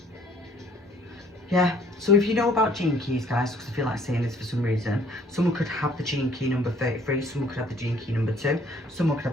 Yeah, so if you know about gene keys, guys, because I feel like saying this for some reason, someone could have the gene key number 33, someone could have the gene key number 2, someone could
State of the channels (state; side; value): normal; both; correlation 0.60